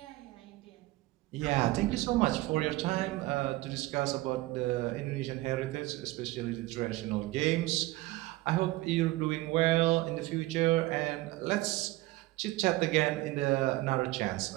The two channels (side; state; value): left; quieter; 18.8 dB